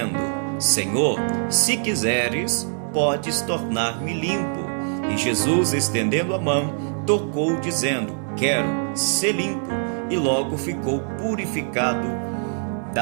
Senhor, se quiseres, podes tornar-me limpo. E Jesus, estendendo a mão, tocou, dizendo: Quero ser limpo. E logo ficou purificado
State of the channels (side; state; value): left; silent; digital silence